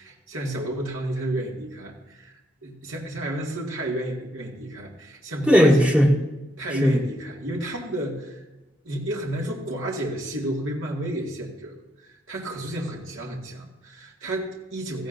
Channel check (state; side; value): normal; both; correlation 0.77